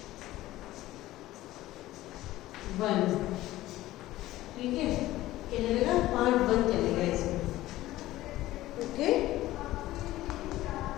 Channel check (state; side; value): quieter; right; 16.1 dB